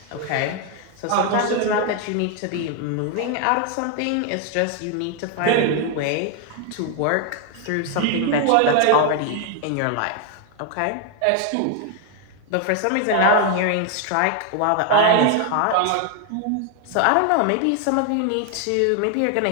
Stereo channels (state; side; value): different; both; correlation 0.00